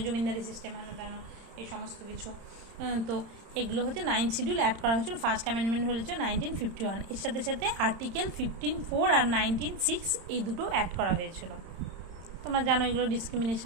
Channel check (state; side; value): late; left; 31 ms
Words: জমিদারি সিস্টেম হেন এই সমস্ত কিছু। তো এগুলো হচ্ছে 9th শিডিউল অ্যাড করা হয়েছিল। ফার্স্ট অ্যামেন্ডমেন্ট হয়েছে 1951। এর সাথে সাথে আর্টিকেল 15(4) আর 19(6) এই দুটো অ্যাড করা হয়েছিল। তোমরা জানো এগুলো